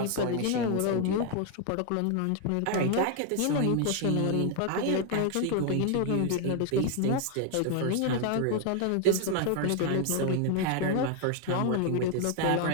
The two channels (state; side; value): different; both; correlation 0.00